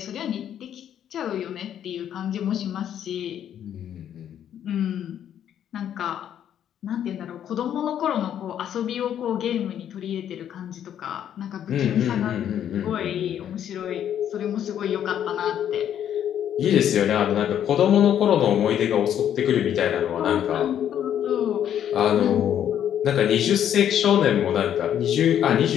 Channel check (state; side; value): quieter; right; 9.9 dB